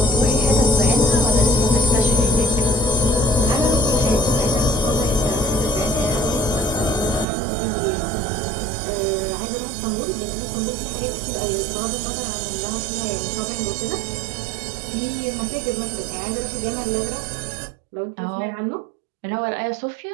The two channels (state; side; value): drops out; left; at 7.2 s